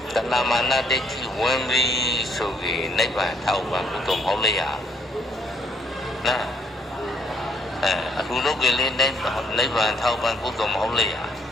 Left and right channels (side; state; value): both; normal; correlation 0.67